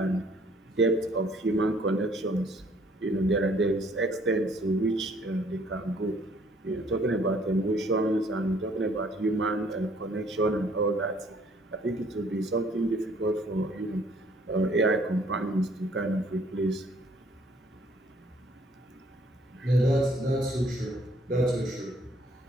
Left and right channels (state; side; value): normal; both; correlation 0.61